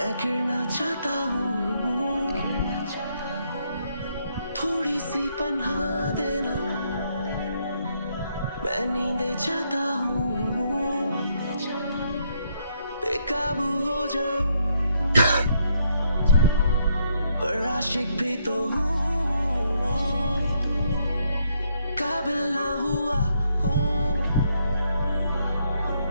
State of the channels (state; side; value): inverted; both; correlation -0.74